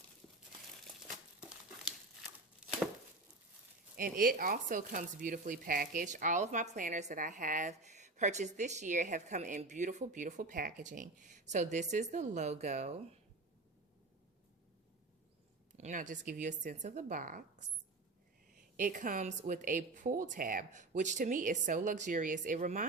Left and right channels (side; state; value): left; quieter; 3.2 dB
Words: And it also comes beautifully packaged. All of my planners that I have purchased this year have come in beautiful, beautiful packaging. So this is the logo. And I'll just give you a sense of the box. It comes with a pull tab, which to me is so luxurious. It